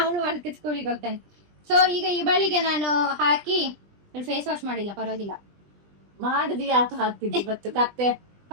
ವರ್ಕ್ ಸ್ಕೂಲಿಗೆ ಹೋಗ್ತಾನೆ. ಸೊ ಈಗ ಈ ಬಳಿಗೆ ನಾನು ಹಾಕಿ ಫೇಸ್ ವಾಶ್ ಮಾಡಿಲ್ಲ, ಪರವಾಗಿಲ್ಲ. ಮಾಡಿದ್ವಿ ಯಾಕೆ ಹಾಕ್ತಿದ್ವಿ ಇವತ್ತು ಕತ್ತೆ?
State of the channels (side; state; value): left; late; 20 ms